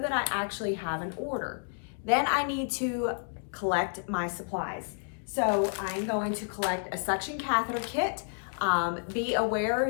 that I actually have an order. Then I need to collect my supplies. So I'm going to collect a suction catheter kit. Be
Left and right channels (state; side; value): silent; right; digital silence